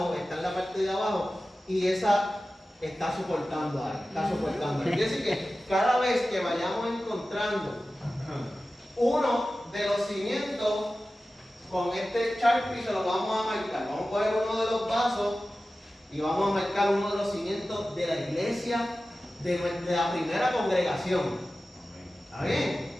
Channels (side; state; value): both; normal; correlation 0.95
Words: está en la parte de abajo, y esa está soportando ahí, está soportando ahí. Quiere decir que cada vez que vayamos encontrando uno de los cimientos, con este Sharpie se lo vamos a marcar. Vamos a coger uno de los vasos y vamos a marcar uno de los cimientos de la iglesia de la primera congregación. ¿Está bien?